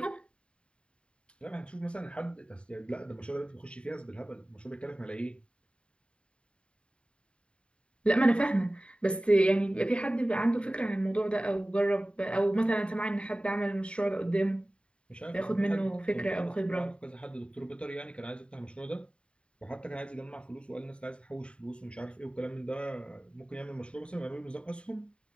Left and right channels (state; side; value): late; right; 0.056 ms